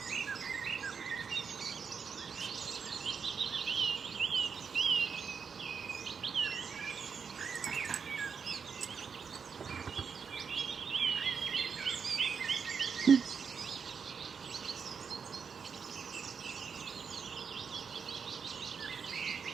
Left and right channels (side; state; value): left; quieter; 6.1 dB